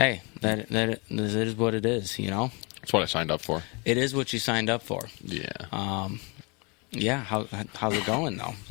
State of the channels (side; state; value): right; quieter; 30.2 dB